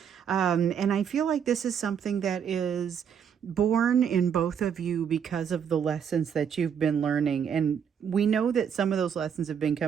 And I feel like this is something that is born in both of you because of the lessons that you've been learning. And we know that some of those lessons have been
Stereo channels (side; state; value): left; quieter; 7.8 dB